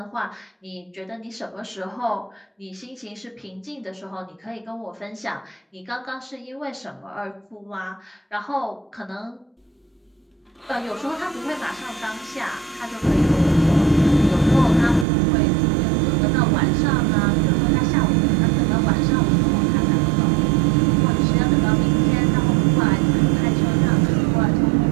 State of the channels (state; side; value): drops out; left; at 15.1 s